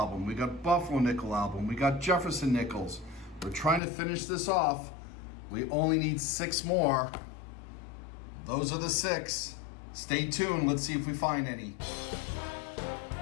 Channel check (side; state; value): right; drops out; at 3.8 s